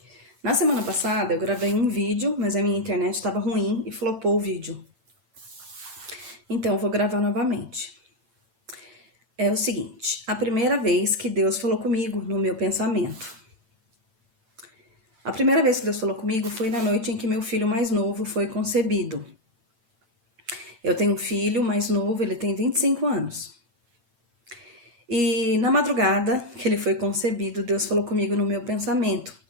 Na semana passada eu gravei um vídeo, mas a minha internet estava ruim e flopou o vídeo. Então eu vou gravar novamente. É o seguinte, a primeira vez que Deus falou comigo no meu pensamento. A primeira vez que Deus falou comigo foi na noite em que meu filho mais novo foi concebido. Eu tenho um filho mais novo, ele tem 25 anos. E na madrugada que ele foi concebido, Deus falou comigo no meu pensamento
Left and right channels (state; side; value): late; left; 8.9 ms